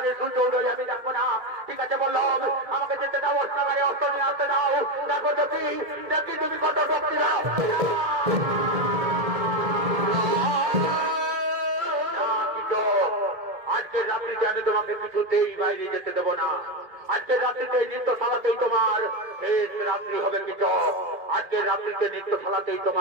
সূর্য উদয় আমি দেখবো না। ঠিক আছে বললো, আমাকে যেতে দাও, অস্ত্রাগারে অস্ত্র নিয়ে আসতে দাও। দেখো দেখি দেখি তুমি কত শক্তি দাও। আজকের রাত্রিতে আমি তোমাকে কিছুতেই বাইরে যেতে দেবো না। আজকের রাত্রিতে নৃত্যশালাতেই তোমার শেষ রাত্রি হবে কৃষক। আজকের রাত্রিতে নৃত্যশালাতেই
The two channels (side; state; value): left; late; 2.2 ms